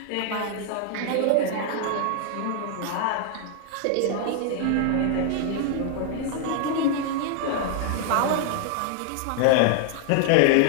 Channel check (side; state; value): both; different; correlation 0.00